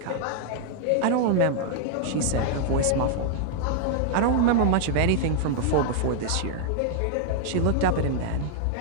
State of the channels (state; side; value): different; both; correlation -0.01